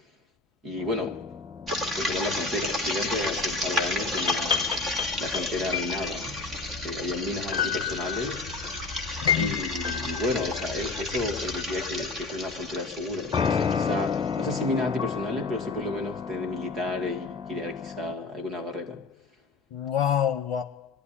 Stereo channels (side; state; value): right; quieter; 3.6 dB